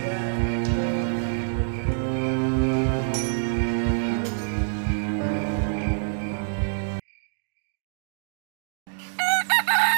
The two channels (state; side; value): silent; left; digital silence